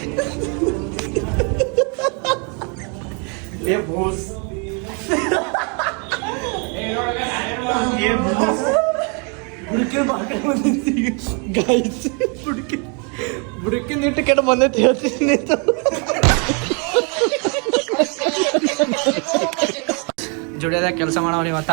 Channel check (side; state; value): left; quieter; 35.6 dB